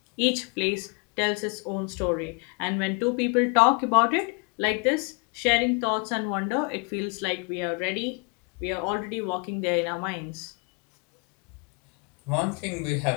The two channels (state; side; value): quieter; right; 33.6 dB